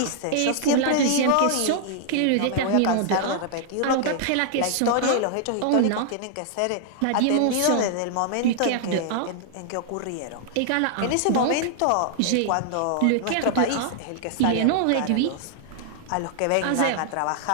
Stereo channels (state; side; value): different; both; correlation -0.01